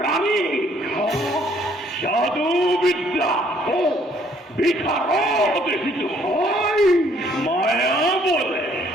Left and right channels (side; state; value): both; normal; correlation 0.64